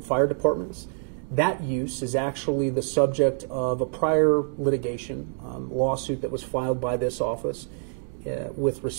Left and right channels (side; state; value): left; silent; digital silence